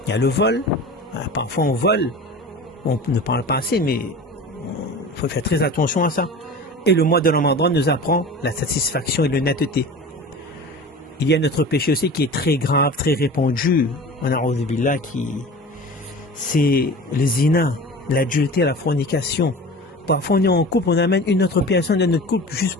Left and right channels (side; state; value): both; normal; correlation 0.36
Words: Il y a le vol. Parfois on vole. On ne parle pas assez, mais il faut faire très attention à ça. Et le mois de Ramadan nous apprend la satisfaction et l'honnêteté. Il y a notre péché aussi qui est très grave, très répandu. C'est le zina, l'adultère, la fornication. Parfois on est en couple, on amène une autre personne dans notre couple juste